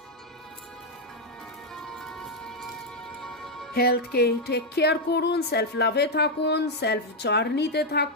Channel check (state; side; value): normal; both; correlation 0.01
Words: হেলথকে টেক কেয়ার করুন, সেলফ লাভে থাকুন, সেলফ জার্নিতে